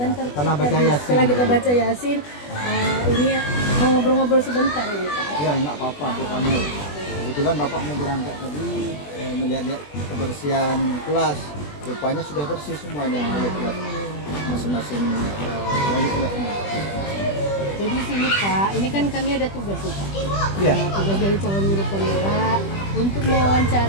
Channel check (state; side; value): late; right; 20 ms